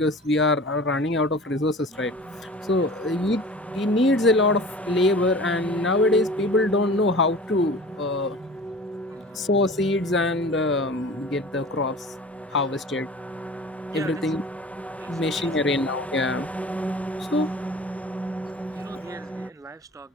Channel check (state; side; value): normal; both; correlation 0.41